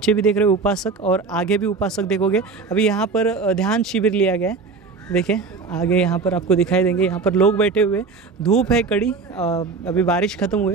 भी देख रहे हो उपासक और आगे भी उपासक देखोगे। अभी यहाँ पर ध्यान शिविर लिया गया है। देखें आगे यहाँ पर आपको दिखाई देंगे, यहाँ पर लोग बैठे हुए, धूप है कड़ी, अभी बारिश ख़त्म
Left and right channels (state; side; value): quieter; left; 4.5 dB